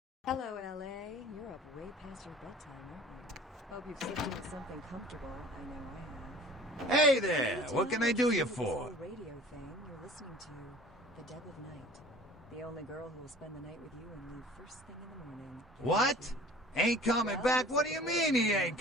Hello, LA. You're up way past your bedtime, aren't you? Hope you've slipped into something comfortable. I know I have. Hey there! What can I do you for? Radio thing you're listening to, The Dead of Night. The only girl who will spend the night with you and leave first thing in the morning. What? Ain't coming back? What do you mean he ain't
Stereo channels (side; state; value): both; normal; correlation 0.46